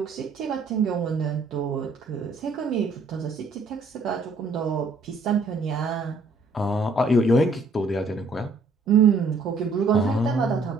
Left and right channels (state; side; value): quieter; left; 3.5 dB